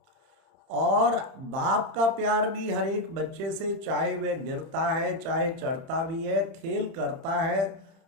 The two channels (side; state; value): left; late; 30 ms